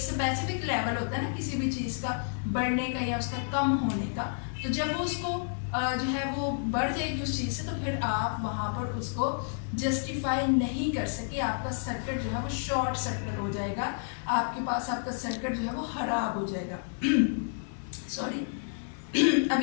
लेवल होता है ना किसी भी चीज़ का बढ़ने का या उसका कम होने का, तो जब वो उसको जो है वो बढ़ जाएगी उस चीज़ से, तो फिर आप वहाँ पर उसको जस्टिफाई नहीं कर सके, आपका सर्किट जो है वो शॉर्ट सर्किट हो जाएगा, आपके पास आपका सर्किट जो है वो खराब हो जाएगा। सॉरी। अब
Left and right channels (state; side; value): silent; right; 58 dB below the other